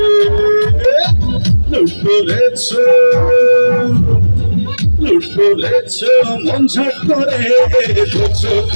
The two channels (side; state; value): both; inverted; correlation -1.00